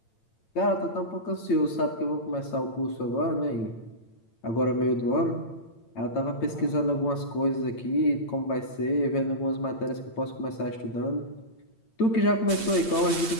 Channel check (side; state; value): right; late; 8.8 ms